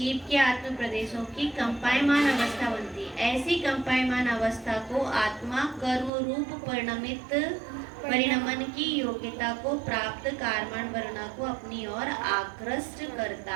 के आत्म प्रदेशों की कंपायमान अवस्था बनती है। ऐसी कंपायमान अवस्था को आत्मा कर्म रूप परिणमन की योग्यता को प्राप्त कार्मण वर्णा को अपनी ओर आकृष्ट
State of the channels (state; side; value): drops out; left; at 6.1 s